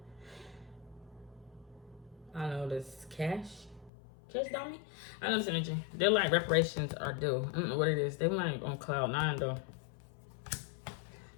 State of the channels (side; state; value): right; drops out; at 3.9 s